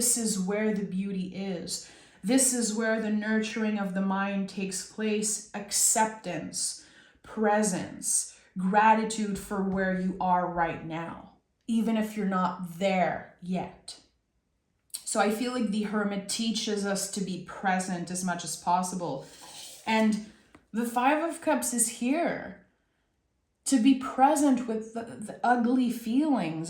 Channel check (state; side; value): identical; both; correlation 1.00